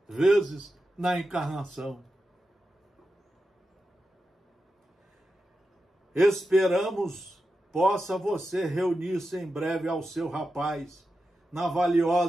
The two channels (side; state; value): both; normal; correlation 0.90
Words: vezes na encarnação. Esperamos possa você reunir-se em breve ao seu rapaz na